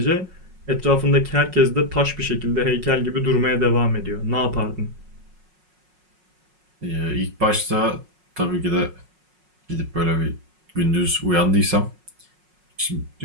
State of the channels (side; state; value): left; late; 5.5 ms